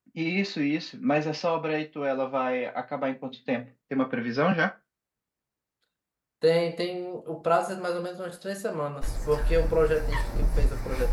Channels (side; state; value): both; identical; correlation 1.00